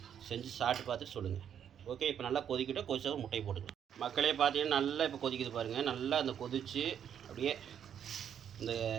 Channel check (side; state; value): left; quieter; 8.9 dB